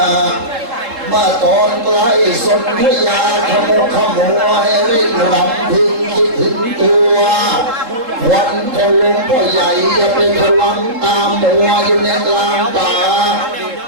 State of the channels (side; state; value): left; late; 3.7 ms